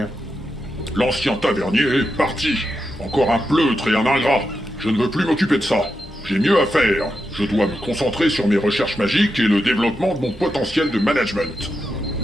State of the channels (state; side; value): normal; both; correlation 0.87